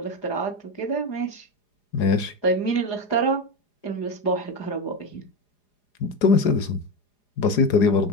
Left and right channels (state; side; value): late; right; 4.9 ms